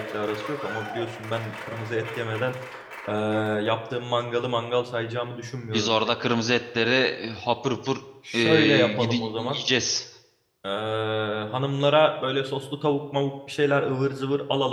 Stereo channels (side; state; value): both; identical; correlation 1.00